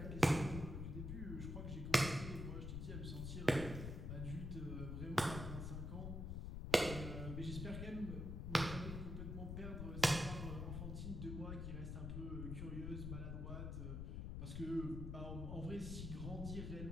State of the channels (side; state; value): left; noise; rumble, 4 dB below the sound